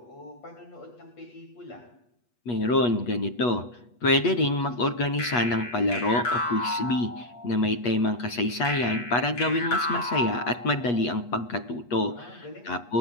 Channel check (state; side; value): late; right; 8.3 ms